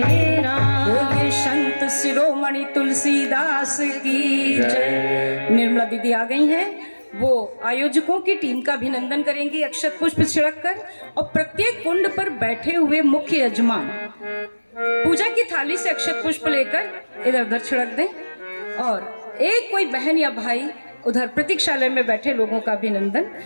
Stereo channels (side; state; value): both; inverted; correlation -1.00